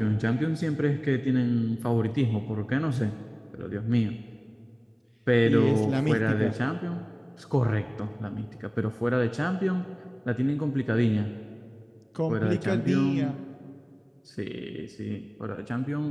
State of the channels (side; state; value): both; identical; correlation 1.00